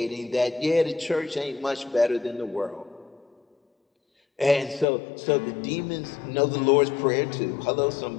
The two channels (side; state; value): right; drops out; at 4.9 s